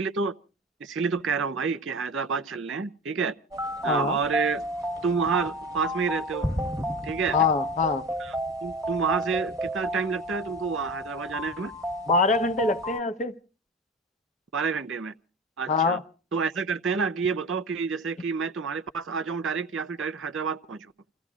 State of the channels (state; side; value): normal; both; correlation 0.33